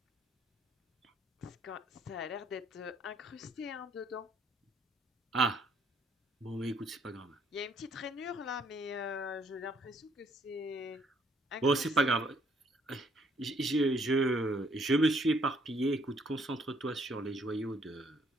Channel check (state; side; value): normal; both; correlation 0.66